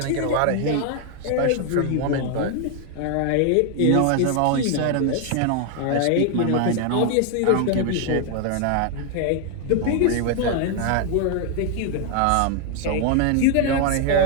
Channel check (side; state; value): both; different; correlation 0.00